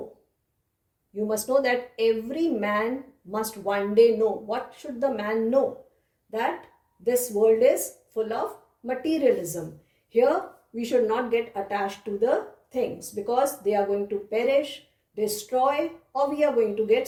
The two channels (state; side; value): identical; both; correlation 1.00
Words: You must know that every man must one day know. What should the man know? That this world is full of materialism. Here we should not get attached to the things because they are going to perish, destroy, or we are going to get